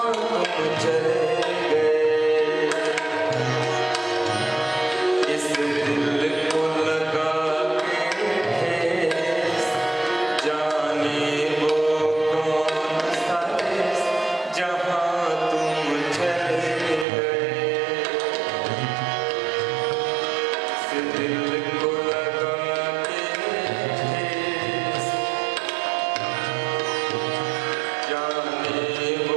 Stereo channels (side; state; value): left; drops out; at 17.1 s